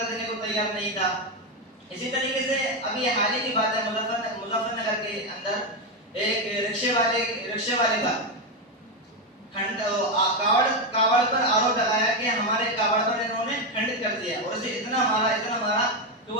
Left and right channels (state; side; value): normal; both; correlation 0.09